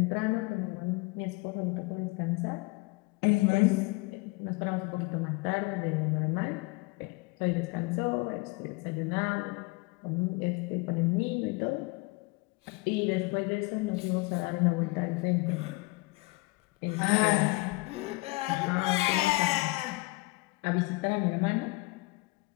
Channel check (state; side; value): quieter; right; 25.2 dB